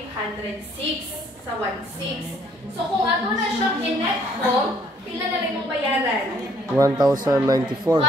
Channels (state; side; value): normal; both; correlation 0.64